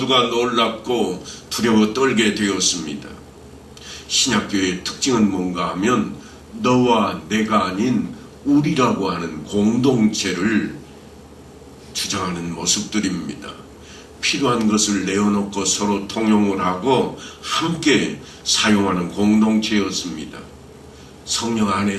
놀랍고 두려워 떨게 되었습니다. 신약교회의 특징은 뭔가 하면 너와 내가 아닌 우리라고 하는 공동체를 주장하는 모습들입니다. 필요한 것을 내어놓고 서로 통용을 하고 함께 사용하는 공동체였습니다. 성령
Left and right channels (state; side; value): identical; both; correlation 1.00